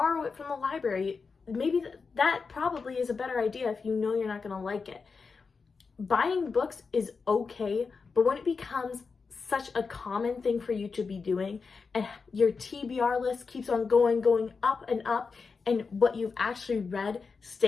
it from the library. Maybe that probably is a better idea if you know you're not going to like it. Buying books is okay, but when it becomes such a common thing for you to be doing and your TBR list keeps on going up and up, and what you've actually read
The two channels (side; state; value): right; quieter; 4.9 dB